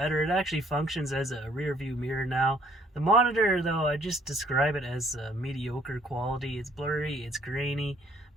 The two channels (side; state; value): both; normal; correlation 0.62